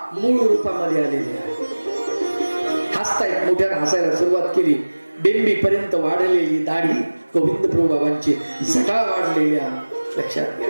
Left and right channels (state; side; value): inverted; both; correlation -1.00